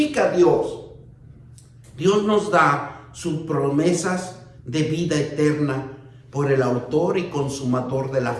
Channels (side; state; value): both; identical; correlation 1.00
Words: a Dios. Dios nos da sus promesas de vida eterna por el autor y consumador de la